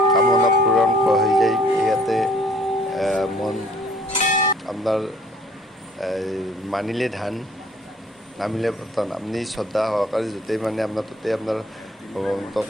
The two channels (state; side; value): normal; both; correlation 0.57